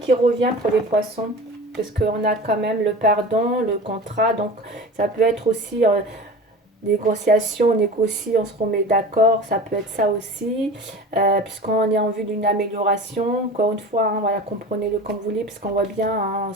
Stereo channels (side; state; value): both; normal; correlation 0.35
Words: revient pour les poissons. Parce qu'on a quand même le pardon, le contrat. Donc, ça peut être aussi négociation, on négocie, on se remet d'accord. Ça peut être ça aussi. Puisqu'on est en vue d'une amélioration. Encore une fois, hein, voilà, comprenez-le comme vous voulez. Puisqu'on voit bien, hein,